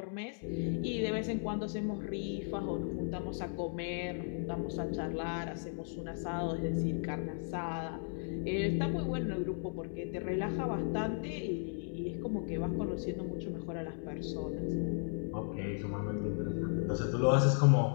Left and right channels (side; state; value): right; silent; 54 dB below the other